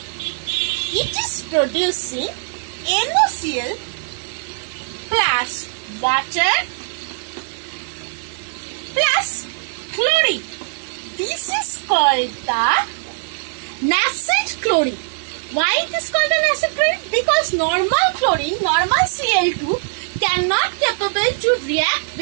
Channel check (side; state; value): left; silent; 65 dB below the other